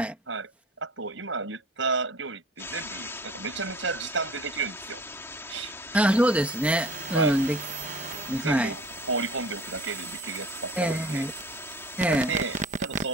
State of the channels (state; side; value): normal; both; correlation 0.44